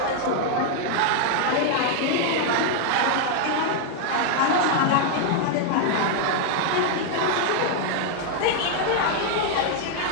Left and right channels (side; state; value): both; different; correlation 0.00